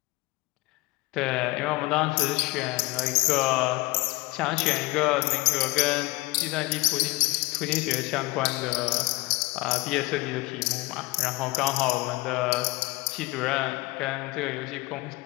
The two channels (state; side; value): quieter; right; 21.9 dB